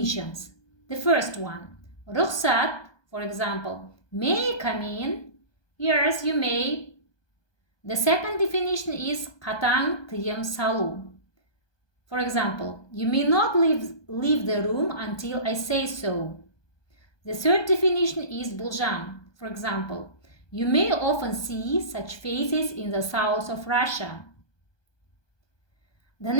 The first one, рұқсат, for example, may I come in? Yes, you may. The second definition is қатаң тыйым салу. For example, you may not leave the room until I say so. The third definition is болжам. For example, you may often see such faces in the south of Russia. The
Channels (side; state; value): right; late; 1.2 ms